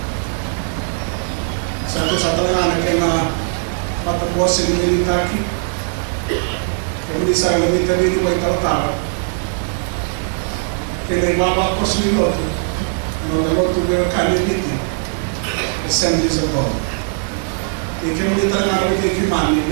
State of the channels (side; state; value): left; silent; 67 dB below the other